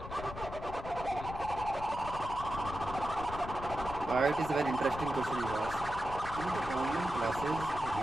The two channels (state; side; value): noise; left; rumble, 11 dB below the sound